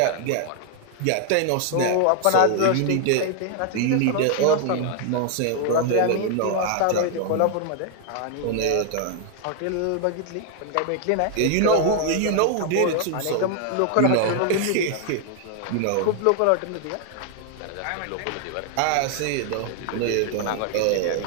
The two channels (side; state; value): both; different; correlation 0.00